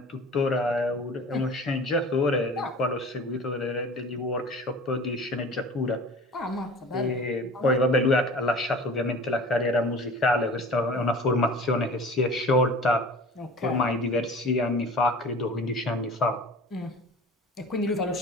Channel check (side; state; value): both; normal; correlation 0.41